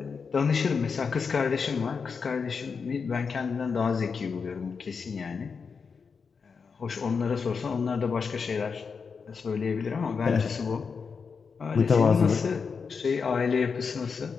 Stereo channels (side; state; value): right; quieter; 5.5 dB